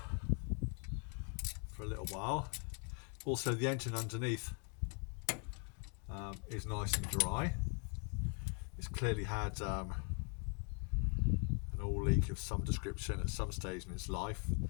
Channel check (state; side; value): quieter; right; 39.2 dB